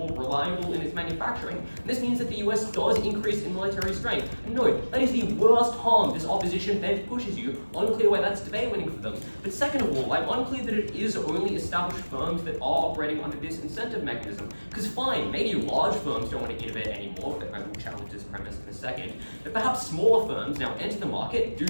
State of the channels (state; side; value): inverted; both; correlation -1.00